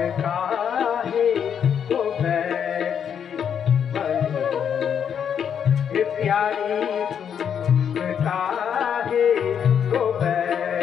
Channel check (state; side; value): quieter; right; 8.1 dB